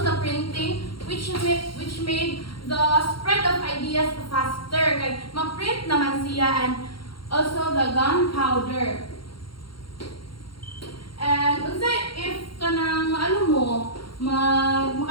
the printing, which made the spread of ideas faster. Kay ma-print naman siya, and also the gunpowder. And unsay if kanang maano mo,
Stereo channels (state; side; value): late; right; 0.73 ms